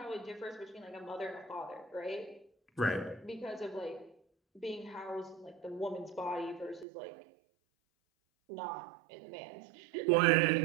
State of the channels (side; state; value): left; drops out; at 6.9 s